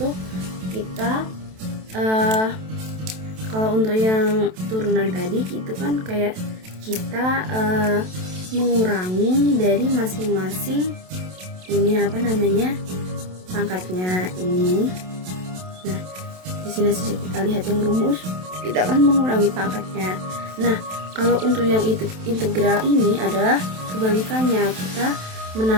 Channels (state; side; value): late; left; 27 ms